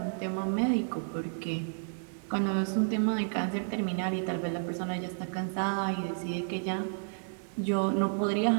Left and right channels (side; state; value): left; silent; 57 dB below the other